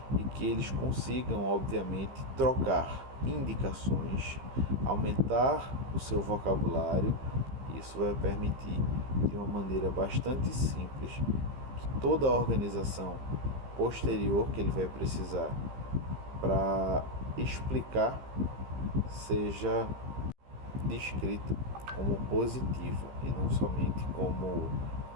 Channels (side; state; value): left; late; 15 ms